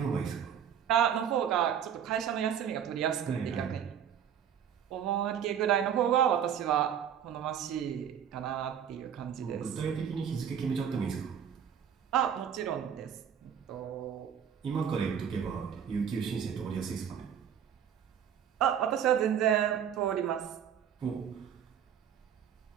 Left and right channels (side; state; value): left; quieter; 8.7 dB